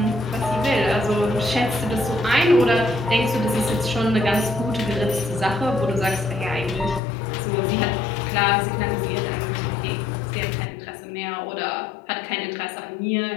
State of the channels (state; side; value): drops out; right; at 7.0 s